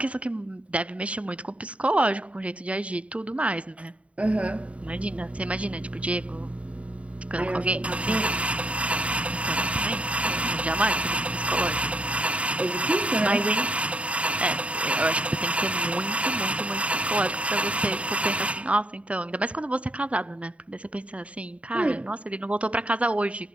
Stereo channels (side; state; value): left; late; 0.064 ms